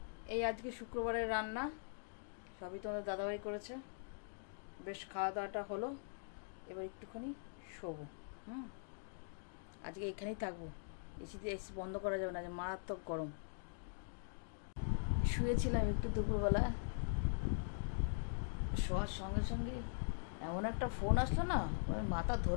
এই আজকে শুক্রবারের রান্না, সবই তোমাদের দাদাভাই করেছে। বেশ খাওয়া দাওয়াটা হলো, এবার একটুখানি শোবো। আজকে এখানেই থাকবো, এসি বন্ধ করা যাবে না, মারাত্মক গরম। শুয়েছিলাম একটু দুপুরবেলা, শোয়ার সঙ্গে সঙ্গে এমন একটা ফোন আসলো না, মানে মাথা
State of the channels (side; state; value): right; silent; digital silence